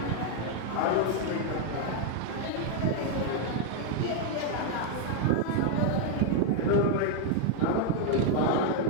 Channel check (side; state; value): both; different; correlation 0.00